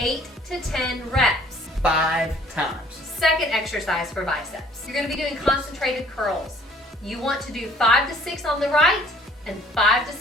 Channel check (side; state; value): both; normal; correlation 0.57